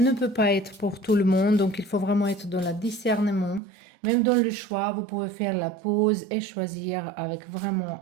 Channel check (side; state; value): left; drops out; at 3.6 s